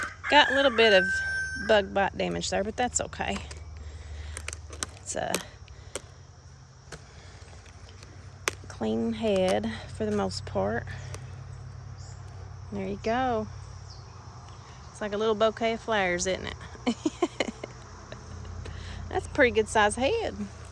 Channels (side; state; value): both; identical; correlation 1.00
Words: Got a little bit of bug bite damage there, but that's okay. It's a clean head for the most part. There you go. It's like a little bouquet of flowers, isn't it? That's a pretty good size head.